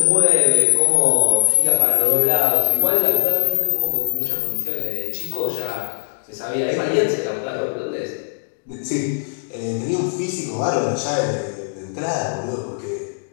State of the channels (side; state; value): right; silent; digital silence